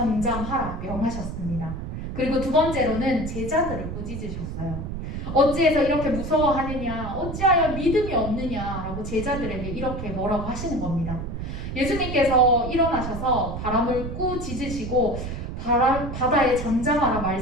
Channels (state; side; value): noise; right; rumble, 6 dB below the sound